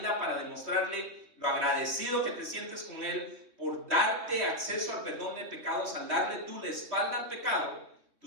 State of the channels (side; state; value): left; late; 2.9 ms